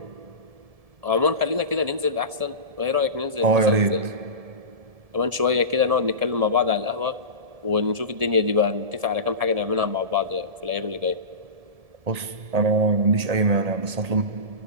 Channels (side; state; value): left; late; 1.7 ms